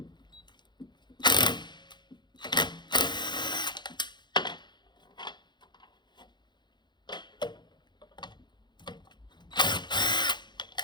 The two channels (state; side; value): late; right; 0.21 ms